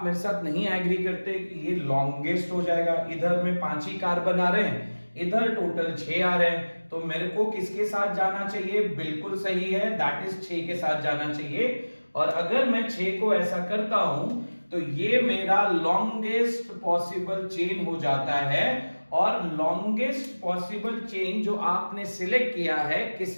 मेरे साथ नहीं एग्री करते कि ये लॉन्गेस्ट हो जाएगा? इधर में 5 ही कार्बन आ रहे हैं, इधर टोटल 6 आ रहे हैं, तो मेरे को किसके साथ जाना चाहिए? बिल्कुल सही है, दैट इज 6 के साथ जाना चाहिए। और अगर मैं 6 को ऐसा करता हूं तो ये मेरा लॉन्गेस्ट पॉसिबल चेन हो जाता है। और लॉन्गेस्ट पॉसिबल चेन जो आपने सिलेक्ट किया है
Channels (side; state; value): both; inverted; correlation -1.00